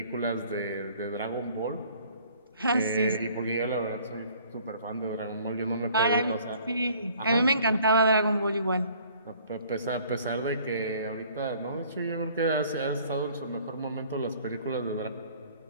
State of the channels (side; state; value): both; inverted; correlation -0.56